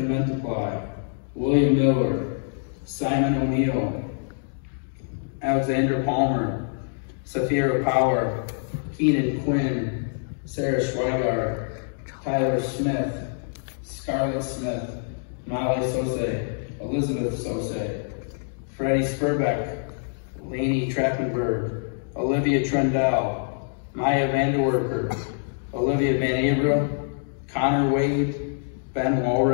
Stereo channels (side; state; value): right; silent; digital silence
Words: Mentaply, William Miller, Simon O'Neill, Alexandra Palmer, Safira Power, Keenan Quinn, Sarah Schweigart, Tyler Smith, Scarlett Smith, Molly Sose, Elizabeth Sose, Freddie Spurbeck, Lainey Trappenberg, Olivia Trendell, Maya Vanderwerker, Olivia Van Abra, Connor Wade, Ben